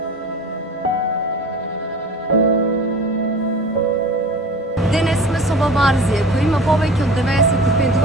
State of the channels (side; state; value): both; normal; correlation 0.38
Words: Денес сме со баба Арзија, која има повеќе од 95